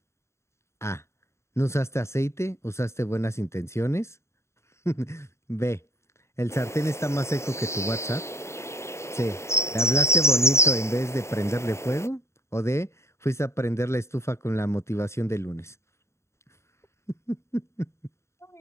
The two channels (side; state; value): right; late; 0.13 ms